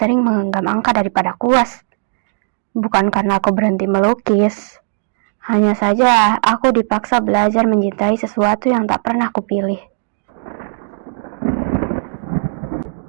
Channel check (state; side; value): silent; left; digital silence